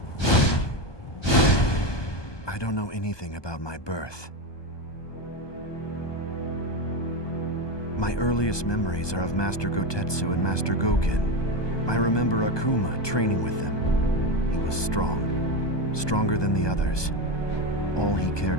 I don't know anything about my birth. My earliest memories are of Master Gotetsu and Master Goken. I remember Akuma training with them. He was strong, stronger than the others. All he cared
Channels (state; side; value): late; right; 1.2 ms